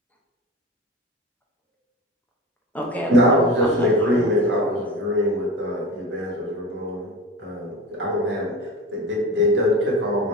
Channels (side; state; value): both; normal; correlation 0.31